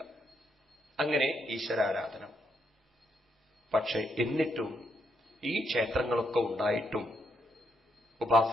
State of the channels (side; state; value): both; normal; correlation 0.78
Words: അങ്ങനെ ഈശ്വരാരാധന. പക്ഷെ എന്നിട്ടും ഈ ക്ഷേത്രങ്ങളൊക്കെ ഉണ്ടായിട്ടും